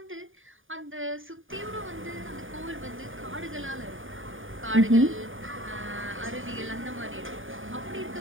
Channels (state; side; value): late; left; 0.58 ms